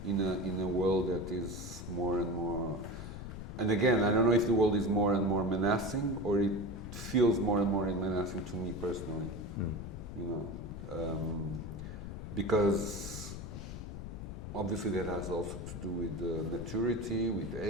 in a world that is more and more. And again, I don't know if the world is more and more menacing or it feels more and more menacing to me personally. You know, because obviously that has also to do with maturity, with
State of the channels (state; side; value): noise; left; rumble, 8 dB below the sound